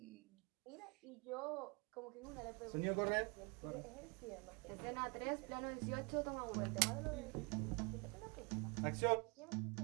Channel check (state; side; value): quieter; left; 31.0 dB